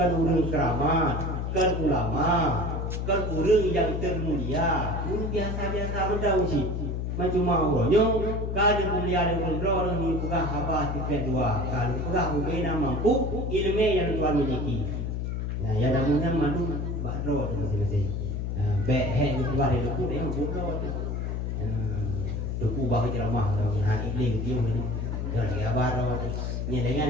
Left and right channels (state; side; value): noise; left; hum, 2 dB below the sound